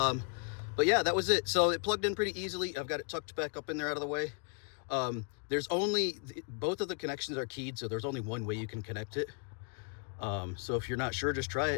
yeah, that was it. So it plugged in pretty easily. I've got it tucked back up in there out of the way. There's only, both of the connections are keyed, so there's only one way you can connect it. So if you're not sure, just try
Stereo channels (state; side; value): quieter; right; 39.4 dB